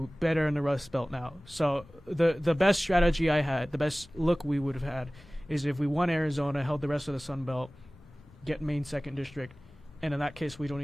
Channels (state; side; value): normal; both; correlation 0.98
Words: better in the Rust Belt now. So the best strategy I had, the best look we would have had, is if we won Arizona, held the rest of the Sun Belt, get Maine 2nd District, and in that case we